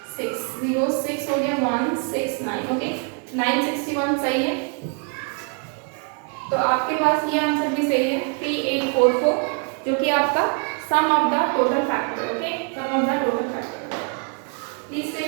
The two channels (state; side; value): quieter; left; 39.4 dB